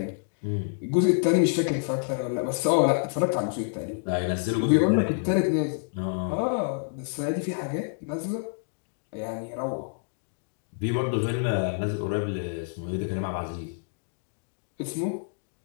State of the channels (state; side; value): silent; right; digital silence